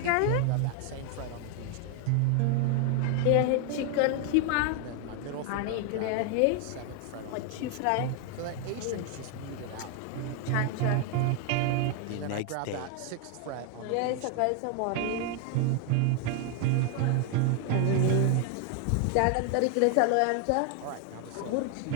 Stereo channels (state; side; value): different; both; correlation 0.00